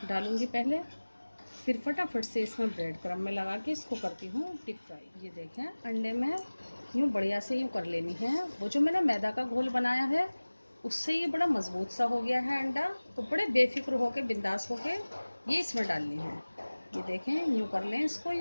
डालूँगी पहले, फिर फटाफट से इसमें ब्रेड क्रम्ब में लगा के इसको करती हूँ डीप फ्राई। ये देखें, अंडे में यूँ बढ़िया से यूँ कर लेनी है। वो जो मैंने मैदा का घोल बनाया है उससे ये बड़ा मज़बूत सा हो गया है अंडा, तो बड़े बेफिक्र होके, बिंदास होके ये इसमें डालनी है। ये देखें, यूँ कर लें इसको,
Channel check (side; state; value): both; inverted; correlation -1.00